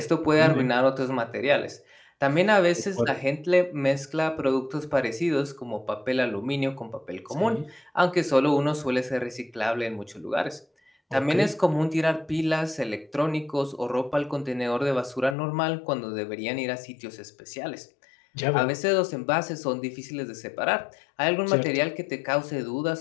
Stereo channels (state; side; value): drops out; right; at 15.4 s